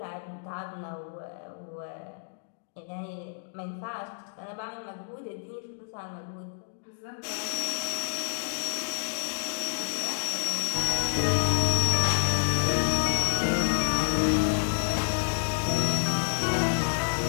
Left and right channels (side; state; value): right; silent; digital silence